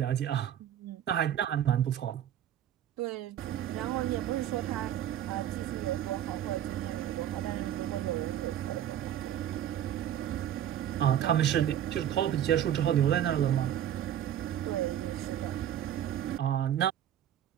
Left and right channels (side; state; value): left; quieter; 10.8 dB